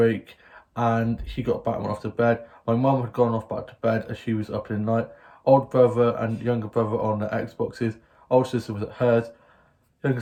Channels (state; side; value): identical; both; correlation 1.00